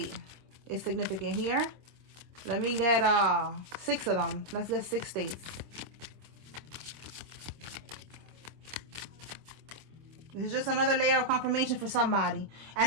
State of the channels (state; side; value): late; left; 26 ms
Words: is significant here? Let me get 6 of them. Let's get 6 states. This is just another layer of confirmation for somebody.